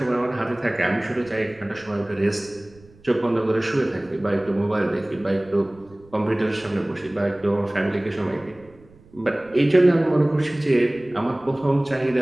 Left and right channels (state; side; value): noise; right; rumble, 26 dB below the sound